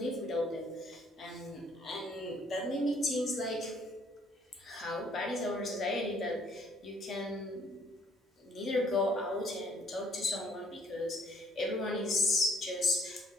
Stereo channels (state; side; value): normal; both; correlation 0.62